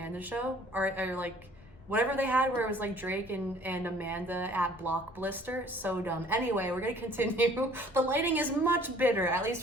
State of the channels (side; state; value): left; noise; rumble, 24 dB below the sound